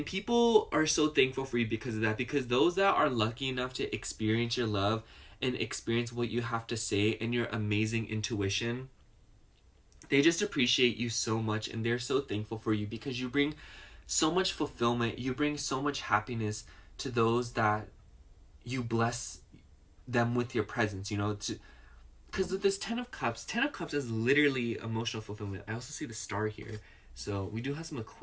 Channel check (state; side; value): identical; both; correlation 1.00